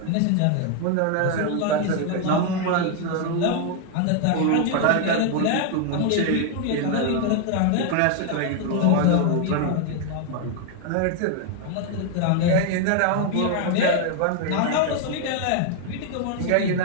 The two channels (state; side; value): different; both; correlation 0.00